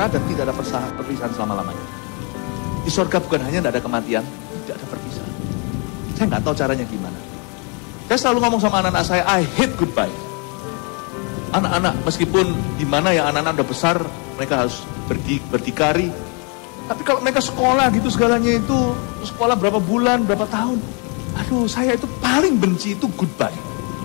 dan tidak ada perpisahan selama-lamanya. Di sorga bukan hanya tidak ada kematian, tidak ada perpisahan. Saya nggak tahu caranya gimana. Saya selalu ngomong sama anak-anak saya, I hate goodbye. Anak-anak, meskipun gimana ya, anak-anak udah besar, mereka harus berdikari. Tapi kalau mereka sekolah gitu segalanya itu, sekolah berapa bulan, berapa tahun. Aduh, saya itu paling benci itu goodbye.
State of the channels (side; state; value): right; quieter; 33.9 dB